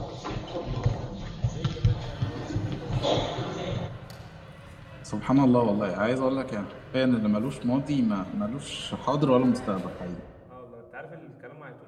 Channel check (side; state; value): both; identical; correlation 1.00